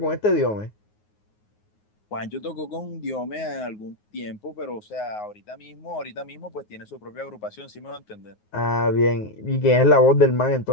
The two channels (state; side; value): late; right; 9.5 ms